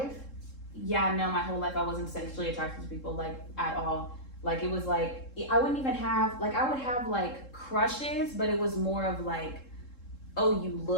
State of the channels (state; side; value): late; right; 3.7 ms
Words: yeah, no, my whole life I wasn't sexually attracted to people, like, at all. Like, it was like, I wouldn't even have, like, I would have like crushes, but it was more of like, oh, you